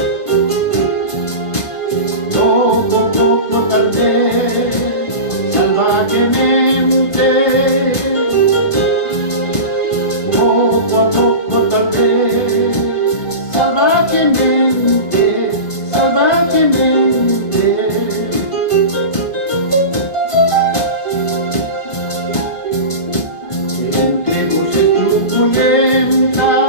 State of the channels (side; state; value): right; late; 1.5 ms